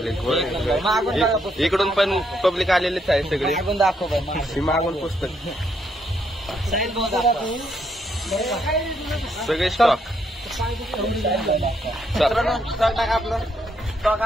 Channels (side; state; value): both; normal; correlation 0.75